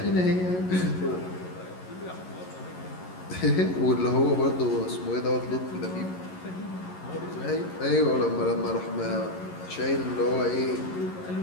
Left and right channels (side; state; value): right; late; 11 ms